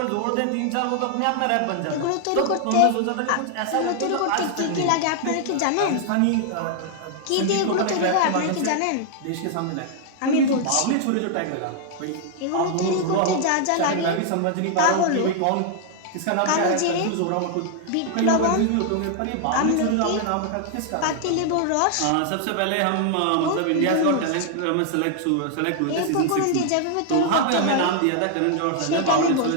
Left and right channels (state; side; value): different; both; correlation 0.00